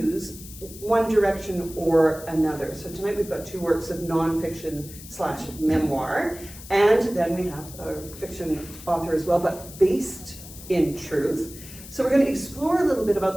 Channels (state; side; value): noise; left; hiss, 16 dB below the sound